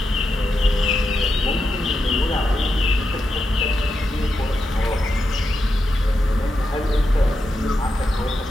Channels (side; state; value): both; normal; correlation 0.86